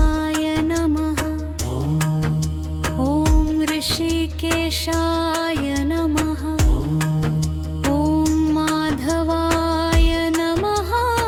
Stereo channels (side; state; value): both; identical; correlation 1.00